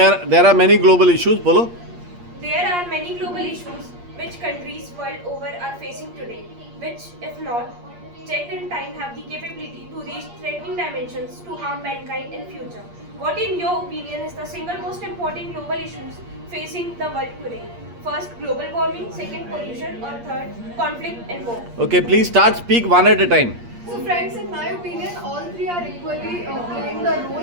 are many global issues. Bolo. There are many global issues which countries world over are facing today, which, if not checked in time, have the capability to reach threatening dimensions to harm mankind in future. What, in your opinion, is the single most important global issues facing the world today? First, global warming. Second, pollution. Or third, conflict and war. Okay, please start. Speak one at a time. So friends, in my opinion, all three are equally playing the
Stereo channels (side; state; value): left; late; 8.5 ms